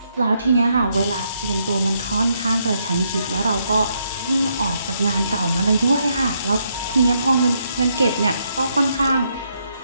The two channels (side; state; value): both; inverted; correlation -0.76